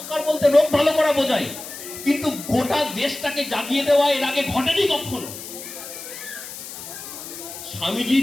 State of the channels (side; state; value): left; noise; hiss, 11 dB below the sound